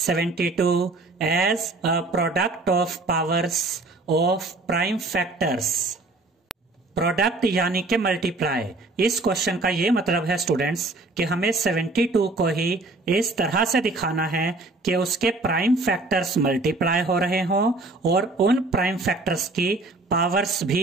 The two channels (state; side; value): quieter; left; 3.1 dB